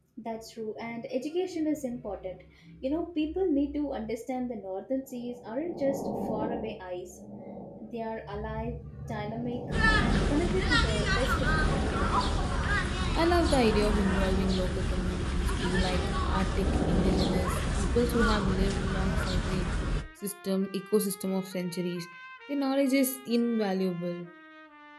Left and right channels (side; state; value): both; identical; correlation 1.00